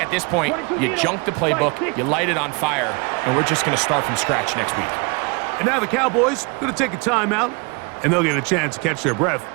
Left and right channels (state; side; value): quieter; left; 30.9 dB